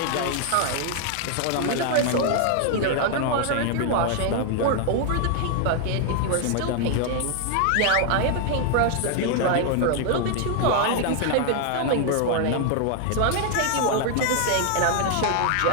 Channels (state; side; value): different; both; correlation 0.00